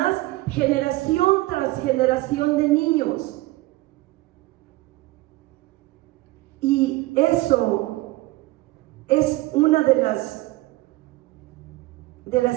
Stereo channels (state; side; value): quieter; left; 19.6 dB